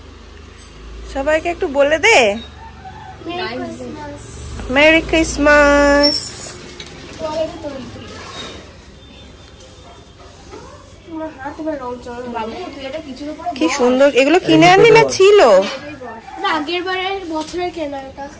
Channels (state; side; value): identical; both; correlation 1.00